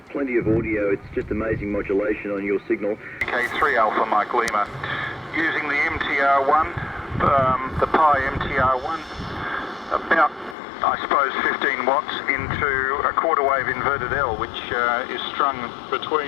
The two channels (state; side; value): drops out; right; at 10.6 s